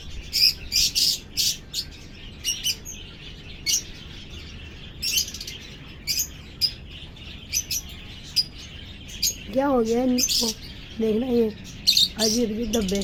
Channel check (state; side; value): identical; both; correlation 1.00